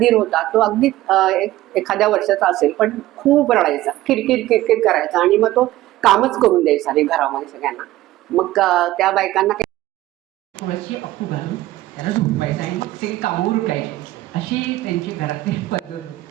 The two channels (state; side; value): quieter; left; 16.0 dB